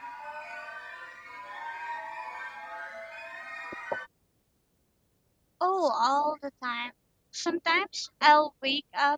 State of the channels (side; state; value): both; identical; correlation 1.00